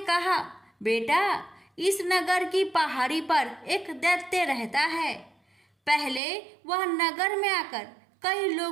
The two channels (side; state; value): left; drops out; at 6.2 s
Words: कहा, बेटा, इस नगर की पहाड़ी पर एक दैत्य रहता है। पहले वह नगर में आकर कई